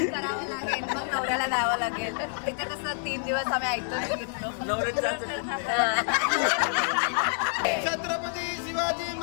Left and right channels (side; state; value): right; silent; digital silence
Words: करावं लागेल, मग नवऱ्याला द्यावं लागेल. इथे कसं 3 दिवस आम्ही ऐकतो. छत्रपती शिवाजी